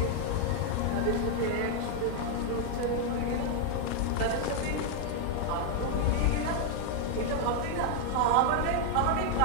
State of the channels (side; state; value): both; different; correlation 0.00